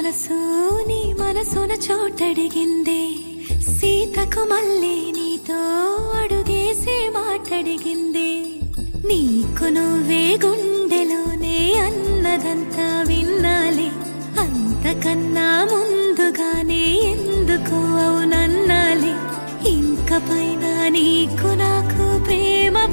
మనసు నీ మనసున చోటడిగిందే, సీతకు మళ్ళీ నీతో అడుగేసి మాటడిగిందే. నీకు నువ్వే గుండెలోనే అన్నదంతా విన్నాలే, అంతకన్నా ముందుగానే ఎందుకు అవునన్నాలే. ఇంక పైన నీకు నాకు ప్రేమ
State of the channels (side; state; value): both; inverted; correlation -1.00